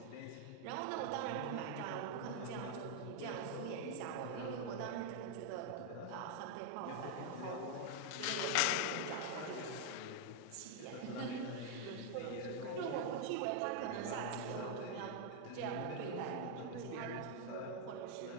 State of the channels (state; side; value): different; both; correlation 0.00